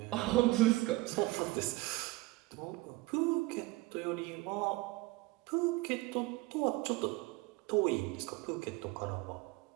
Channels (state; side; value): quieter; left; 20.9 dB